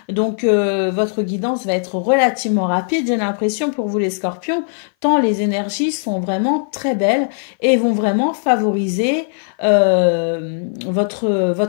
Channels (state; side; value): silent; right; 58 dB below the other